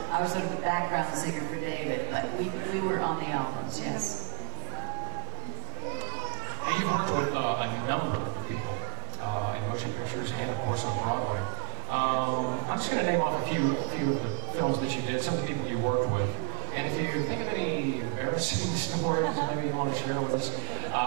I was sort of the background singer for David, but we were on the albums, yes. Now, you've worked with a number of people in motion pictures and, of course, on Broadway. I'm just going to name off a few of the films that you did, some of the people you worked with. And if you think of any embarrassing stories maybe you want to share with us,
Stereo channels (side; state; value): left; silent; 57 dB below the other